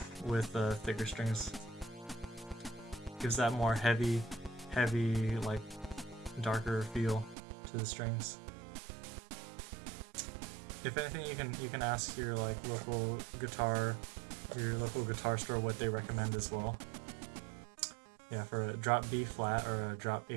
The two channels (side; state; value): left; drops out; at 7.4 s